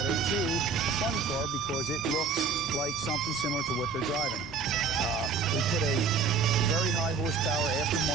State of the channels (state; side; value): quieter; left; 4.9 dB